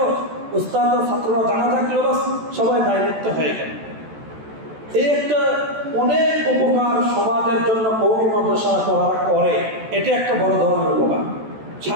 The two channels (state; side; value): late; left; 14 ms